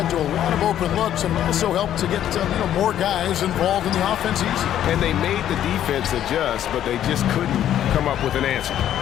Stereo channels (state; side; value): quieter; right; 11.1 dB